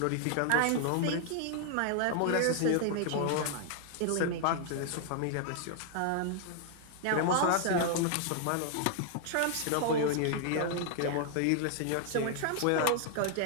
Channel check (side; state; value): both; different; correlation 0.00